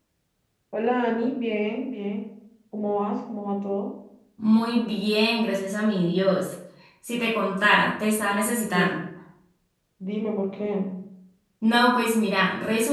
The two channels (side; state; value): both; identical; correlation 1.00